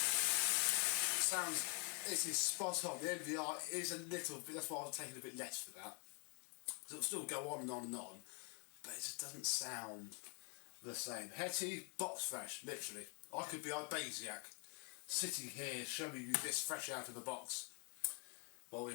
sounds, it is spot on. The MVR is a little bit, that's why I was taking a bit less for that. Because it'll still go on and on and on, but it just doesn't sound the same. Hetty, box fresh, literally. I could be Ibasiak, sitting here showing you this fresh out of the box, while we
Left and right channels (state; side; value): quieter; right; 34.5 dB